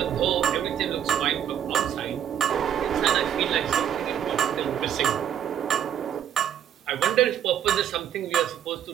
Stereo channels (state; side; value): quieter; left; 9.6 dB